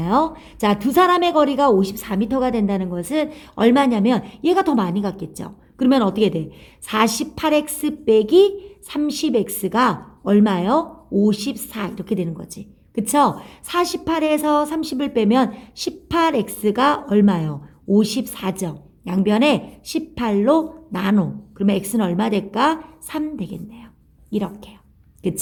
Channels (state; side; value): identical; both; correlation 1.00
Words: 자, 두 사람의 거리가 54m가 된다는 것은 얼마냐면 얘가 더 많이 갔겠죠. 그러면 어떻게 돼? 48x 빼기 30x가 얼마요? 54 이렇게 되는 거지. 그쵸? 48에서 30을 빼면 18x가 얼마요? 54죠. 양변에 18로 나눠. 그러면 x는 얼마 될까? 3 되겠네요. 이렇게요.